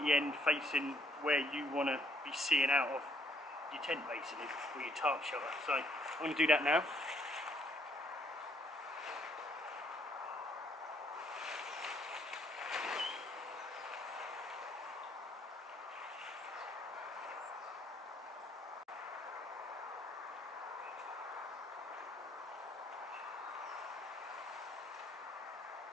end facing where you want to be seeing out of your tent basically, or your tarp shelter. So I'm going to do that now.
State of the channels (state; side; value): normal; both; correlation 0.67